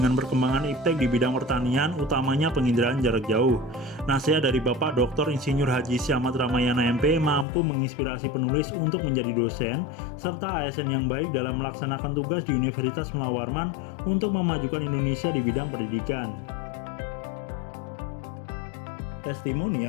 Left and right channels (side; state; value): right; drops out; at 7.5 s